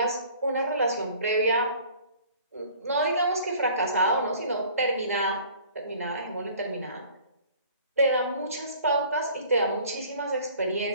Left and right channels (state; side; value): inverted; both; correlation -0.50